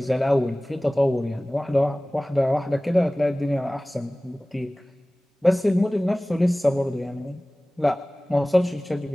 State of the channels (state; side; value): normal; both; correlation 0.98